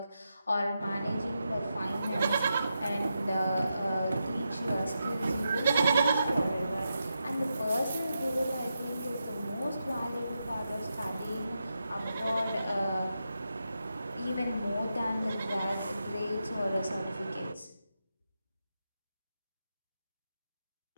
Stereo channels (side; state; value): both; inverted; correlation -0.87